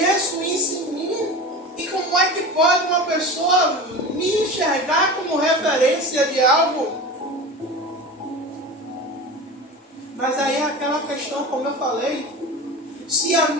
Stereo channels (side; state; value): both; normal; correlation 0.31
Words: isso em mim. E como é que pode uma pessoa me enxergar como referência de algo? Mas aí é aquela questão, como eu falei, se a